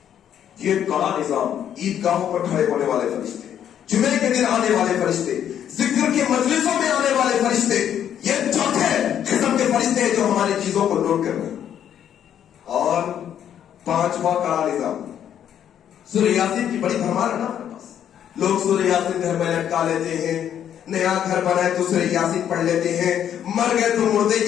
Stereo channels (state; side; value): quieter; right; 9.7 dB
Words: یہ کڑا نظام. عیدگاہوں پر کھڑے ہونے والے فرشتے جمعے کے دن آنے والے فرشتے ذکر کی مجلسوں میں آنے والے فرشتے یہ چوتھے قسم کے فرشتے ہیں جو ہماری چیزوں کو نوٹ کر رہے ہیں. اور 5واں کڑا نظام سورہ یاسین کی بڑی بھرمار ہے نا ہمارے پاس. لوگ سورہ یاسین گھر میں لٹکا لیتے ہیں. نیا گھر بنائے تو سورہ یاسین پڑھ لیتے ہیں. مر گئے تو مردے